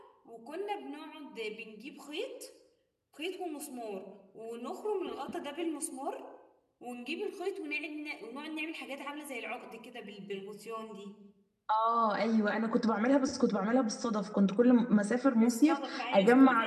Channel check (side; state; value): both; identical; correlation 1.00